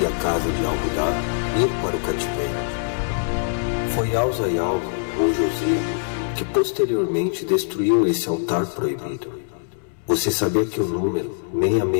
e a casa de Al-Hudá ir para o cativeiro. Foi Al-Zayal, ou Josia, que posteriormente destruiu esse altar proibido. Você sabia que o número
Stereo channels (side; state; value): right; silent; 64 dB below the other